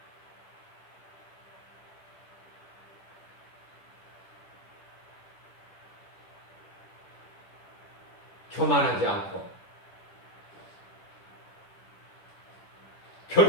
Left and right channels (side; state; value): right; late; 10 ms